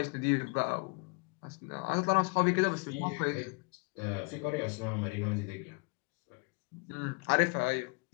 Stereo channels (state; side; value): quieter; right; 32.0 dB